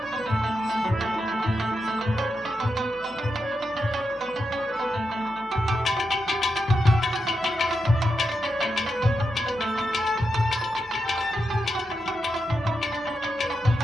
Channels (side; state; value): both; normal; correlation 0.86